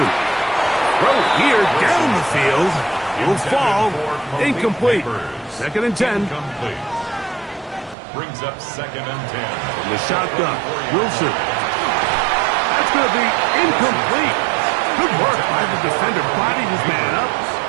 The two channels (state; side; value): drops out; left; at 8.0 s